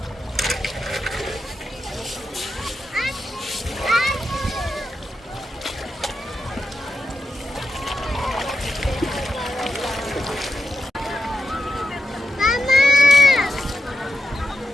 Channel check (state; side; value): normal; both; correlation 0.87